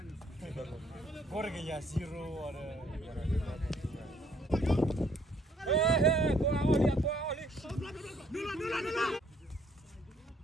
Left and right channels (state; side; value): normal; both; correlation 0.64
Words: Corre que ya zero ada.